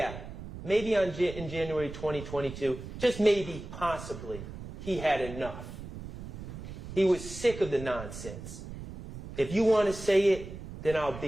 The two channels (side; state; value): right; noise; rumble, 11 dB below the sound